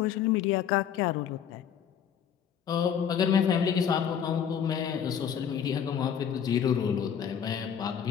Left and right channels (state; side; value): quieter; right; 8.3 dB